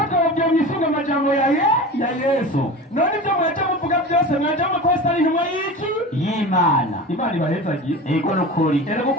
mwisunga amajambo ya Yesu none ibyo mwaje muvuga byose mwaje mukosa ari intumwa y'iki y'Imana Imana ibahezagiye ego nukuri erega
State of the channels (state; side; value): normal; both; correlation 0.32